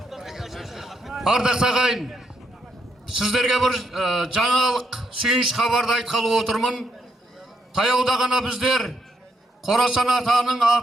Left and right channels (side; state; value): both; normal; correlation 0.77